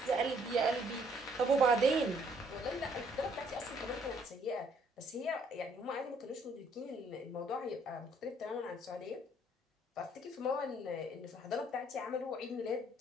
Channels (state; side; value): normal; both; correlation 0.65